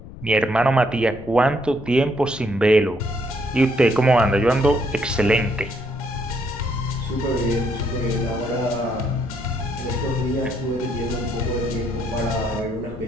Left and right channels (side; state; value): left; noise; rumble, 16 dB below the sound